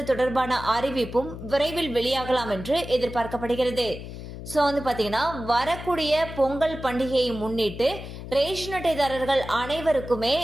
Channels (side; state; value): left; noise; hum, 11 dB below the sound